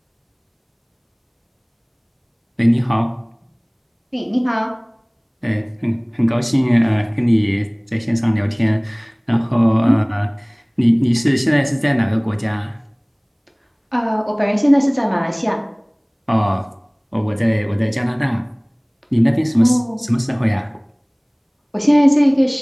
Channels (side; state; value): both; identical; correlation 1.00